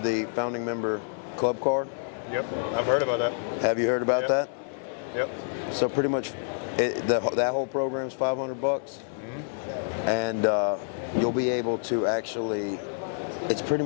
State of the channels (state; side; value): silent; right; digital silence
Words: the founding member club card. Yep, I've heard about that. Have you heard about that? Yep. So pretty much, that whole program is $500, and you'll be able to actually. It's pretty